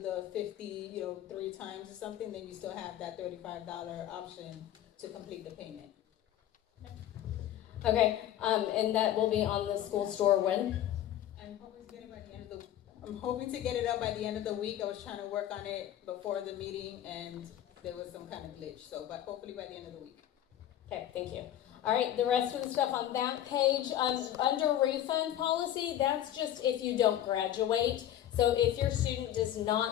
50, 3 times or something. Then you still have that $35 option to complete the payment. Okay, and that will be on the school store when? I'm hoping to get it by the end of the. I'm hoping to get it up by the end of the week. I was trying to work on it before the meeting, and there was some kind of glitch. So, but hopefully by the end of the week. Okay, thank you. All right, the rest of the stuff on that page, under refund policy, that's just if you don't graduate. So if your student does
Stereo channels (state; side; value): quieter; right; 11.9 dB